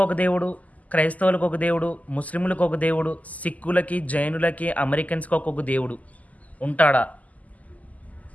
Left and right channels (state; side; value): late; right; 0.075 ms